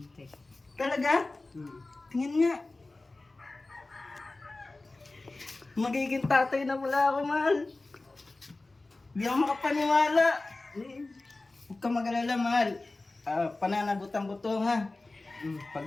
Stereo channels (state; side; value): quieter; right; 3.2 dB